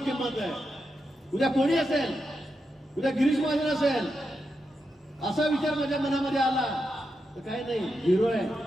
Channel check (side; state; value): both; normal; correlation 0.86